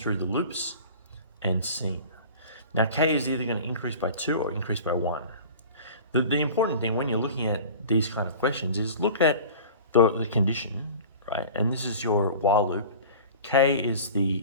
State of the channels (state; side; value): inverted; both; correlation -0.40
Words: the loops and seeing. Now K is either going to increase by 2 or increase by 1. The important thing when you're looking at these kind of questions is look at the condition, right? And this is your while loop. K is